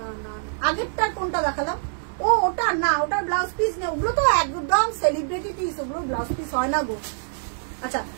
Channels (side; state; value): left; silent; digital silence